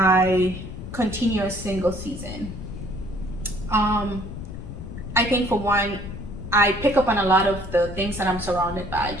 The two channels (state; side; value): noise; left; rumble, 10 dB below the sound